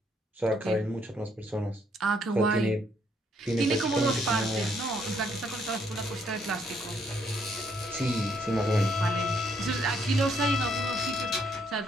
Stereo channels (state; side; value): normal; both; correlation 0.70